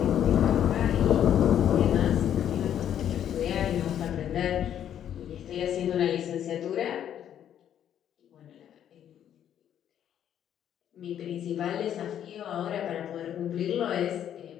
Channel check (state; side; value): quieter; right; 10.0 dB